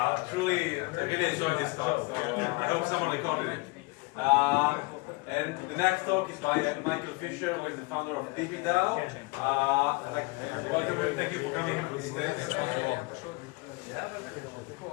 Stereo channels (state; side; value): quieter; right; 26.2 dB